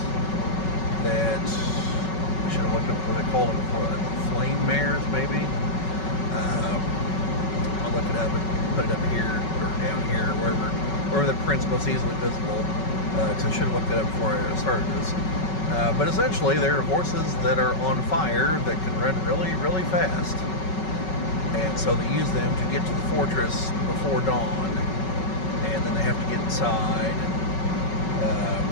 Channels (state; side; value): late; right; 5.3 ms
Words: that I should have looked up what they called them before. Flame mares, maybe. I'll look it up and put it up here or down here, wherever the print's most easily visible. Because I should have looked it up before I started this. But essentially, they're horses that are on fire that can run really, really fast. And so they use them to get to the fortress before dawn. And then they have to get inside. And